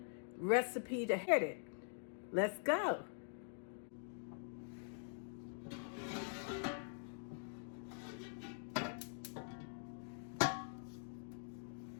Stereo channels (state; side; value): silent; right; digital silence